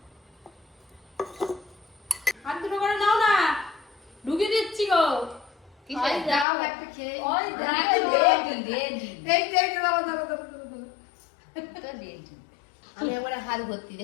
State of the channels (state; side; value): drops out; right; at 6.5 s